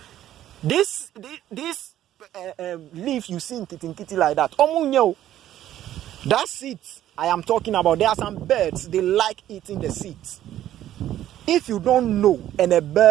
This leaf you see in kitty like that. That seeds I am talking about. There are some birds, they like eating the seeds. If you don't know and a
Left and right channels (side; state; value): left; quieter; 12.5 dB